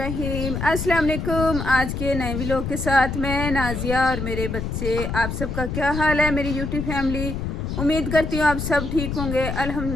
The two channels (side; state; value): left; noise; rumble, 4 dB below the sound